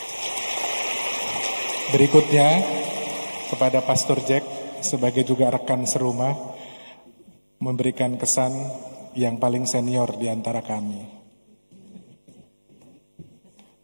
Berikutnya kepada Pastor Jack sebagai juga rekan serumah memberikan kesan yang paling senior di antara kami.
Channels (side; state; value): both; inverted; correlation -1.00